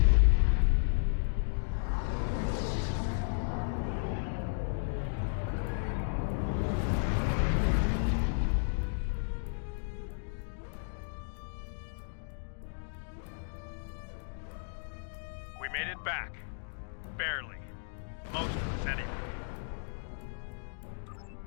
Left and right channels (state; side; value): silent; right; digital silence